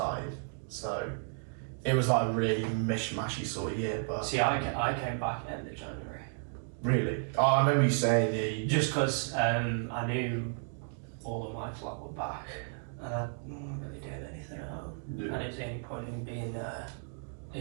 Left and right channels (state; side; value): silent; left; 56 dB below the other